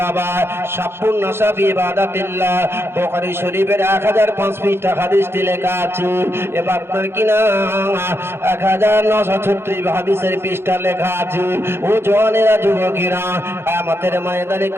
বাবা। সাফুন নাসাফি ইবাদাতিল্লাহ, বুখারী শরীফের 1005 পৃষ্ঠা হাদিসটি লেখা আছে। এবার আপনার কিনা 1936 হাদিসের পৃষ্ঠা লেখা আছে। ও জওয়ানেরা, যুবকেরা, কিয়ামতের ময়দানে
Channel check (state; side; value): late; left; 0.12 ms